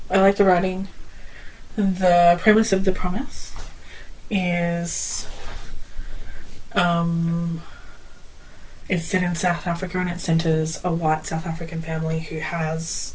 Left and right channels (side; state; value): both; identical; correlation 1.00